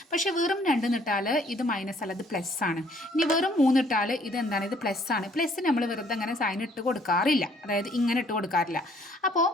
പക്ഷേ വെറും 2 നിട്ടാൽ ഇത് മൈനസ് അല്ല, ഇത് പ്ലസ് ആണ്. ഇനി വെറും 3 ഇട്ടാൽ ഇത് എന്താണ്? ഇത് പ്ലസ് ആണ്. പ്ലസ് നമ്മൾ വെറുതെ അങ്ങനെ സൈൻ ഇട്ട് കൊടുക്കാറില്ല, അതായത് ഇങ്ങനെ ഇട്ട് കൊടുക്കാറില്ല. അപ്പോൾ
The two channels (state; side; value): normal; both; correlation 0.62